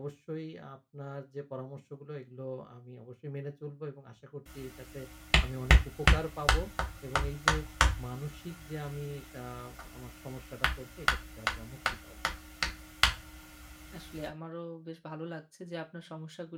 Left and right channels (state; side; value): identical; both; correlation 1.00